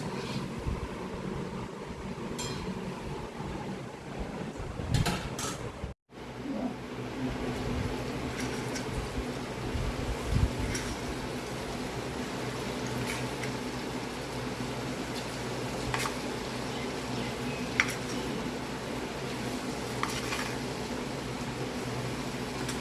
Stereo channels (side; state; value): both; identical; correlation 1.00